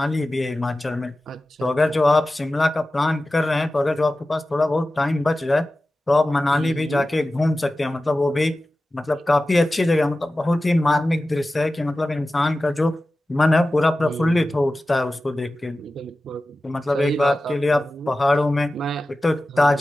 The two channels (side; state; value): both; normal; correlation 0.95